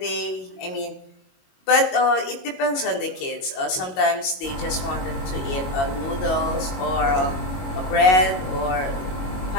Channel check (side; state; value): right; late; 22 ms